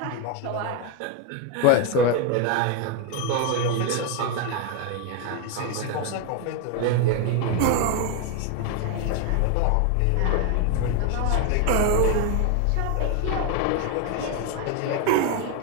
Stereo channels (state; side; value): different; both; correlation 0.01